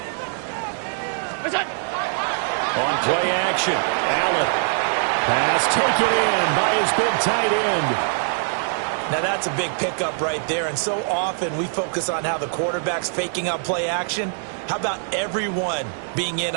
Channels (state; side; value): silent; left; digital silence